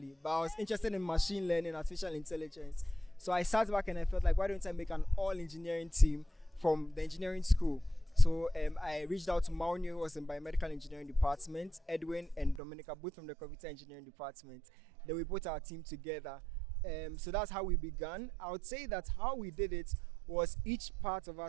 but I was interested in machine learning, artificial intelligence. So I sat back and I felt like, why don't I make an all engineering team from the engineering school? So I reached out to Maunyo, who was in biomedical engineering department, Edwin and Dominica, both from the computer engineering department. Then we put our team together. So that's how we began. I would say that how we did it was each part of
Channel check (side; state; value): left; drops out; at 12.6 s